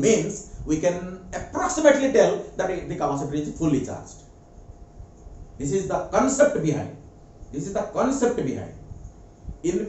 means we can approximately tell that the capacitor is fully charged. This is the concept behind. This is the concept behind.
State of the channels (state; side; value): identical; both; correlation 1.00